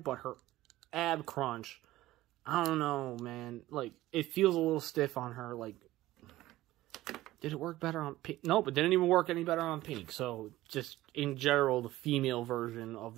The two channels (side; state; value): left; quieter; 16.3 dB